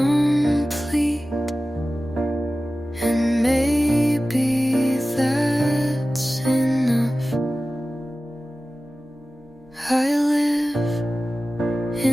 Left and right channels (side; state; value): both; normal; correlation 0.96